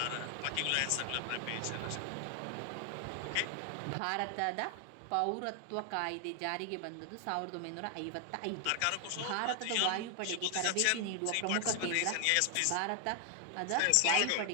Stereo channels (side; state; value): both; different; correlation 0.00